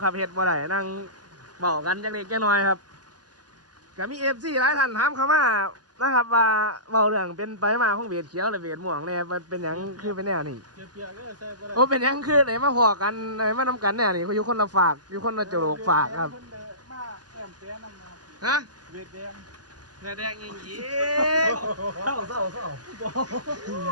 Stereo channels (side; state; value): left; late; 0.69 ms